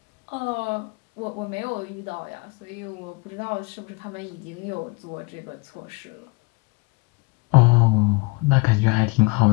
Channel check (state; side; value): quieter; right; 26.2 dB